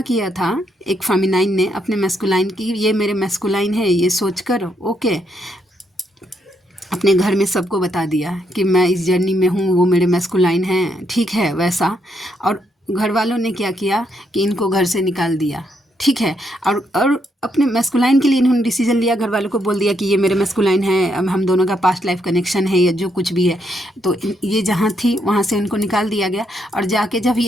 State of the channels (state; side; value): normal; both; correlation 0.76